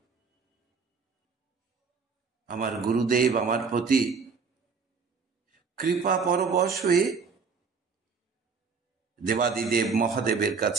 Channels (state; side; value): quieter; left; 5.3 dB